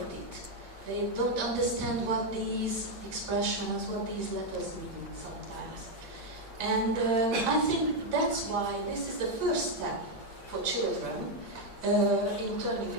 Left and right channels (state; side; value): late; left; 8.6 ms